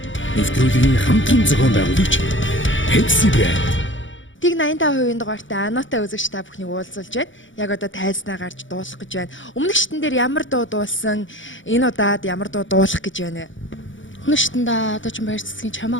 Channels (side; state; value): right; late; 0.56 ms